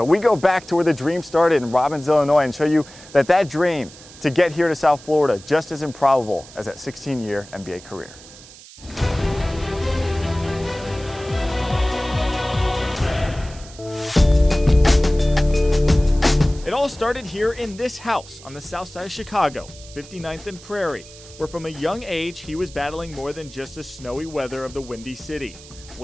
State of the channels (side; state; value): right; noise; hiss, 19 dB below the sound